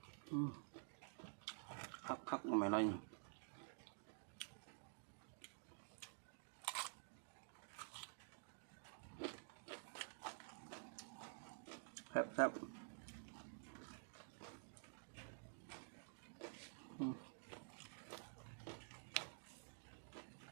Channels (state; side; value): silent; left; digital silence